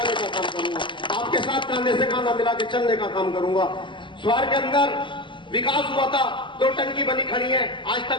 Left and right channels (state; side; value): late; right; 0.24 ms